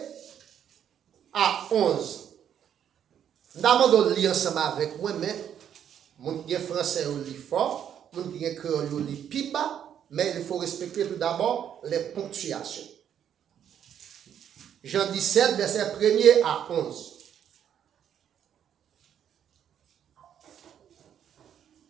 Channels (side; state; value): left; quieter; 9.3 dB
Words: à 11. Nous avons lire ensemble avec moi, mais mon qui est français au lit fort, mon qui est créole au lit piba, mais il faut respecter tout d'abord les ponctuations. Jean 17, verset 1er à 11.